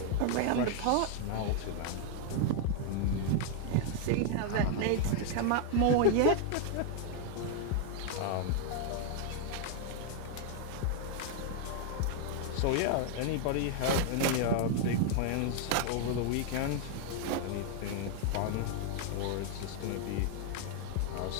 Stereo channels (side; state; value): both; different; correlation 0.00